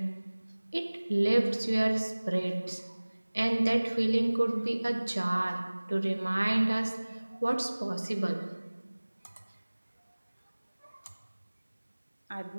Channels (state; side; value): inverted; both; correlation -1.00